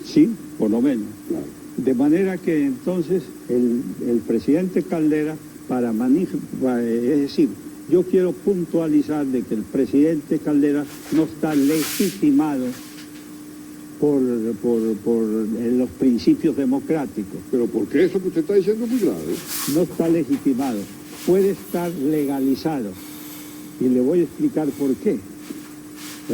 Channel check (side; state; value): both; identical; correlation 1.00